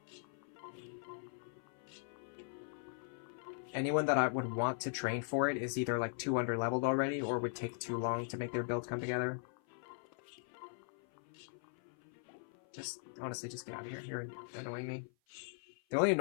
Anyone that I would want to train for it is either like too underleveled already or would take too long to make their build come together. Just, honestly, just get out of here. You're annoying me. The only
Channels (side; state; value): right; silent; 51 dB below the other